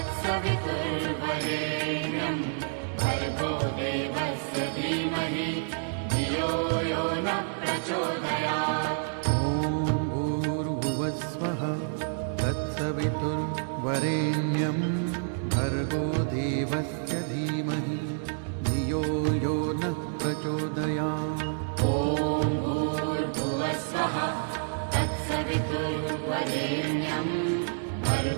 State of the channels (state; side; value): silent; left; digital silence